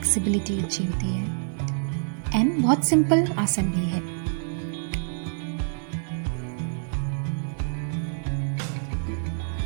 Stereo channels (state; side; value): silent; left; digital silence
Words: अच्छी होती है एंड बहुत सिंपल आसन भी है।